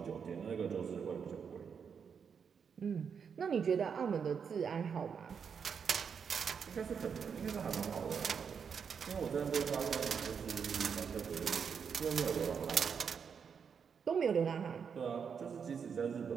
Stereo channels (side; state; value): left; quieter; 6.7 dB